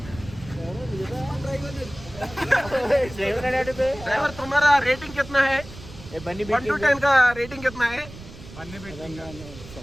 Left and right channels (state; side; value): noise; right; rumble, 16 dB below the sound